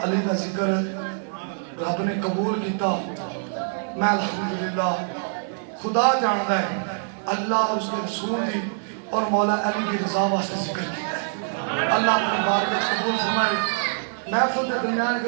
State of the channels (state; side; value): silent; left; 56 dB below the other